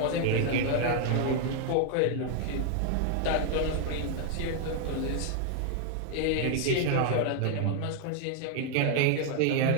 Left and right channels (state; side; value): different; both; correlation 0.00